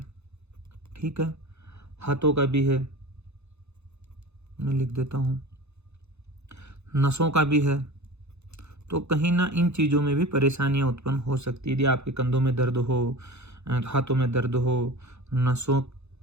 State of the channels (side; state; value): left; late; 0.81 ms